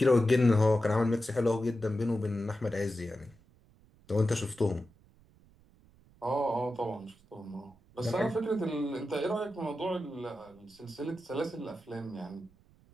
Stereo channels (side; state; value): right; noise; rumble, 29 dB below the sound